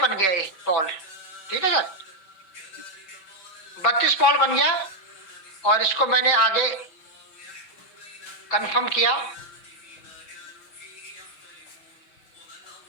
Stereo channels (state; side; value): late; right; 5.2 ms